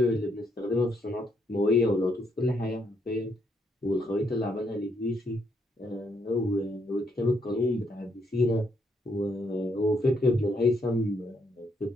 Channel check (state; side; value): normal; both; correlation 0.74